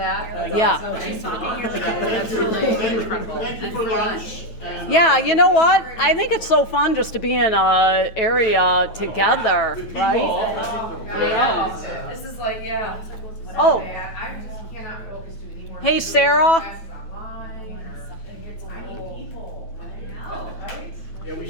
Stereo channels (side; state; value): right; late; 9.2 ms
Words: Yeah. She's talking, you're like, That's really incredible. Thank you for lunch. and, Yeah, you know what? I think it's so fun just to be in a area together, right? Yeah. This is like, yeah. It's like, what's Oh. I just cannot focus to anymore. Hey, Sarah. Classes online or something. It's, I need people. Right? Yeah, we